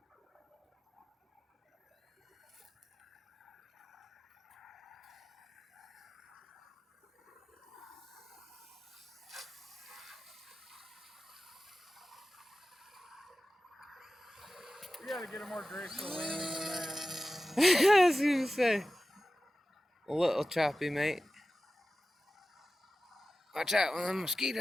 We gotta get a more graceful landing than that. I was gonna say. A little choppy, mate. Watch out, one of them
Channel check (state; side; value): normal; both; correlation 0.95